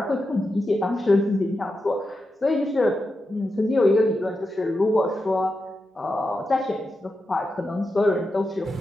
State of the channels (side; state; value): both; normal; correlation 0.88